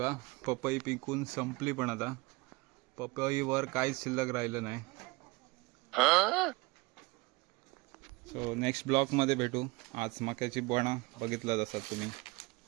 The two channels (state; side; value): quieter; left; 24.4 dB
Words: पपई पिकून संपली, पण आता पपईवर काहीच शिल्लक राहिलं नाही. सो नेक्स्ट ब्लॉगमध्ये भेटू. आज मक्याची बोणा बघितलं असाल तुम्ही.